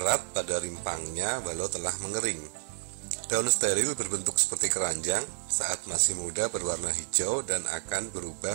pada rimpangnya walau telah mengering. Daun steril berbentuk seperti keranjang, saat masih muda berwarna hijau dan akan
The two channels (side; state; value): left; silent; digital silence